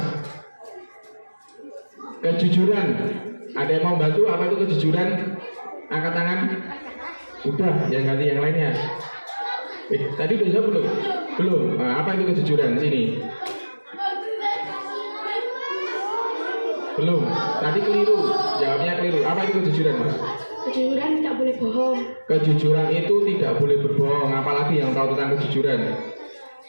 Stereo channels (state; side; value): inverted; both; correlation -1.00